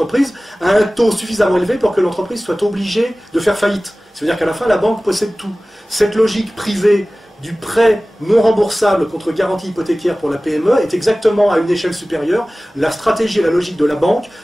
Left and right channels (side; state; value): both; normal; correlation 0.97